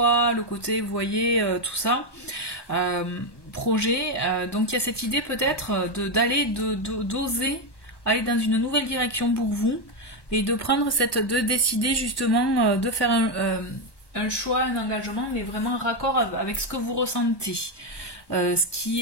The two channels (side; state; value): right; late; 1.1 ms